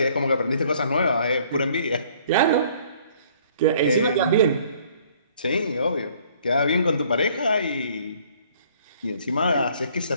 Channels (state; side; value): inverted; both; correlation -0.59